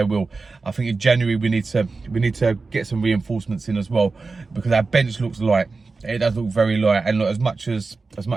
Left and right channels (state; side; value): quieter; left; 4.0 dB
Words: will. I think in January we need to get some reinforcements in as well, because our bench looks light. It does look very light. And look, as much as